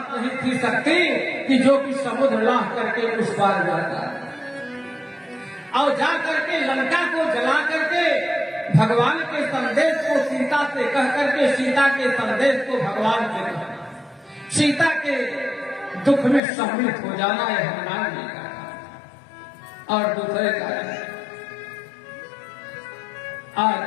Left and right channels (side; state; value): right; drops out; at 16.4 s